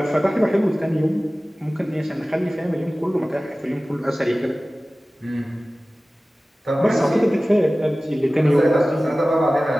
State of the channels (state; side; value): normal; both; correlation 0.97